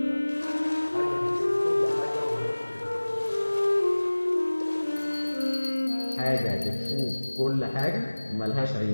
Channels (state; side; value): inverted; both; correlation -1.00